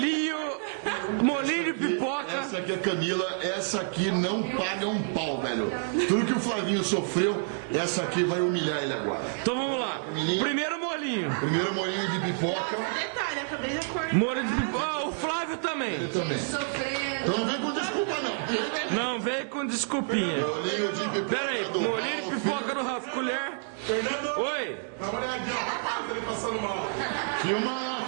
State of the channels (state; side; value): silent; left; digital silence